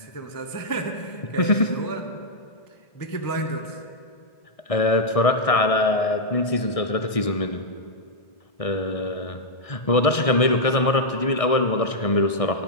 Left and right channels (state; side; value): late; right; 1.6 ms